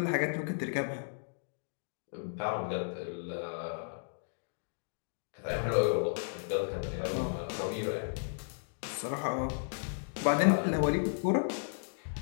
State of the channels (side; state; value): right; silent; digital silence